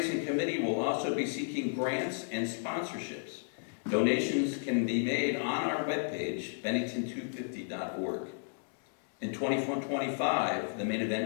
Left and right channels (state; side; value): silent; right; 56 dB below the other